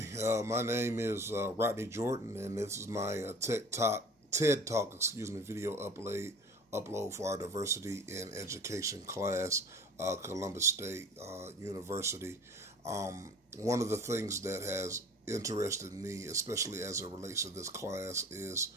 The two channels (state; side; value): normal; both; correlation 0.44